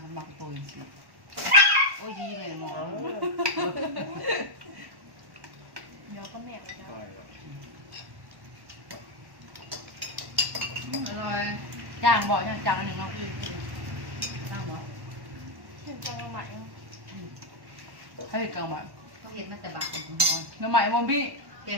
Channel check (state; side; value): late; left; 1.1 ms